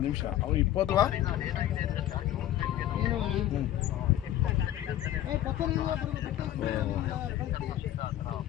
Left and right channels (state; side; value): quieter; right; 12.8 dB